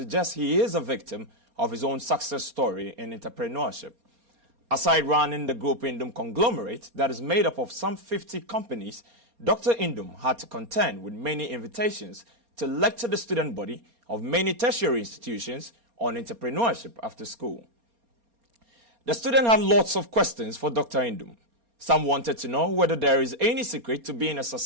he is a victim of his own success story in entrepreneurship. Aside running the Groupe Nduom conglomerate that is made up of some 50 companies, Dr. Nduom had to contend with many invitations to lecture the student body of many tertiary institutions on entrepreneurship after school. The student had lots of questions for Dr. Nduom. Some wanted to know whether there is any secret to being a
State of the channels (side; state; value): left; late; 4.3 ms